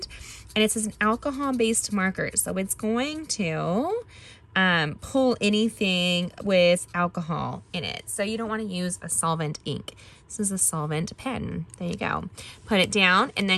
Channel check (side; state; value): both; identical; correlation 1.00